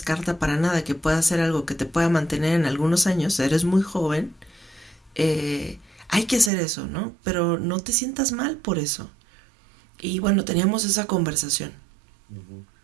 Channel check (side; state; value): left; drops out; at 6.5 s